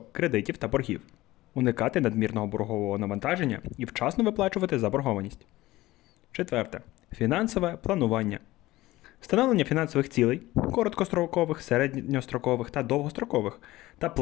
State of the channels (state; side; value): quieter; right; 17.8 dB